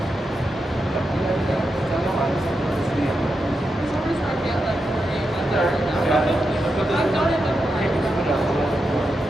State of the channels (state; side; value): normal; both; correlation 0.87